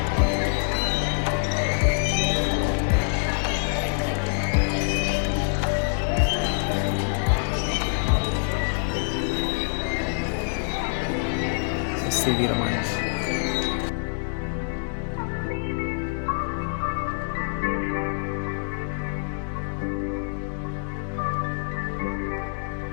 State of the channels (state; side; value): silent; right; digital silence